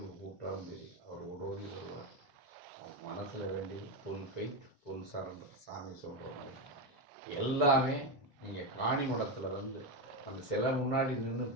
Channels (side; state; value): both; normal; correlation 0.11